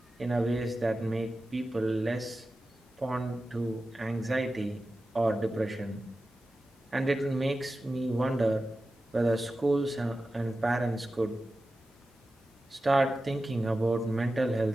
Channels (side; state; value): both; normal; correlation 0.93